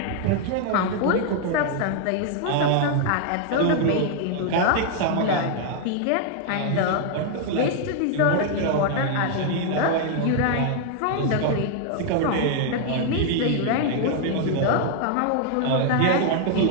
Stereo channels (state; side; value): different; both; correlation 0.00